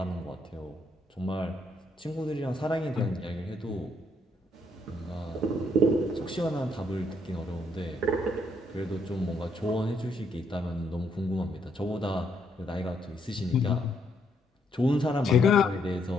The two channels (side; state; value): both; normal; correlation 0.73